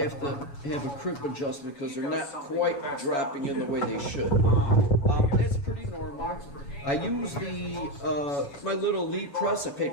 a crimp adjustment because they're not quite dropping in the way they should. That's pretty normal. I use my little Lee press. I paid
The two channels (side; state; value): right; late; 7.1 ms